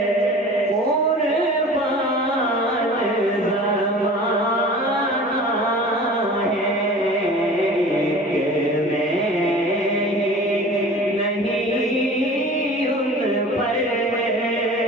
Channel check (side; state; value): both; normal; correlation 0.41